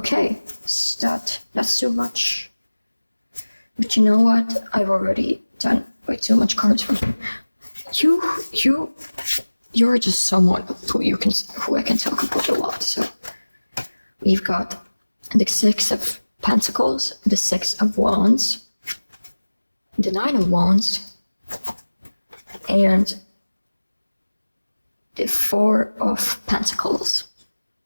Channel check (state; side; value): inverted; both; correlation -1.00